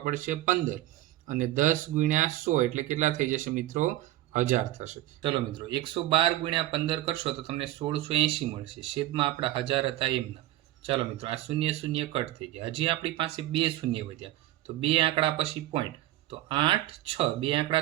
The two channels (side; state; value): left; quieter; 15.1 dB